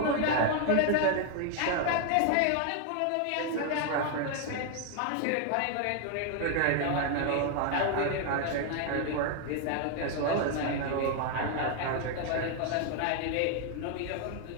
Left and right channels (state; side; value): different; both; correlation 0.00